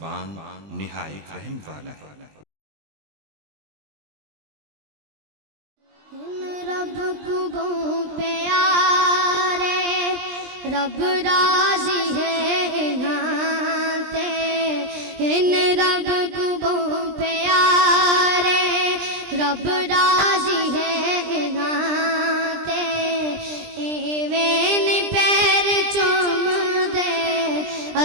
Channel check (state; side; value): late; left; 20 ms